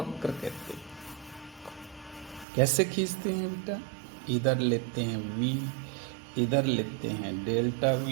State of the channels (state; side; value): drops out; left; at 2.5 s